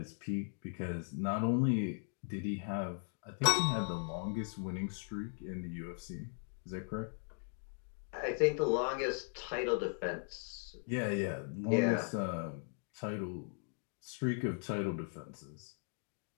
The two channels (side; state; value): right; silent; 52 dB below the other